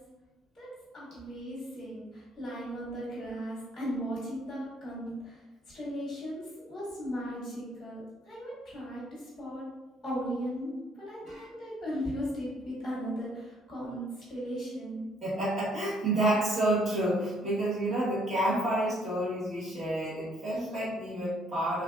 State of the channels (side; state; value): both; normal; correlation 0.66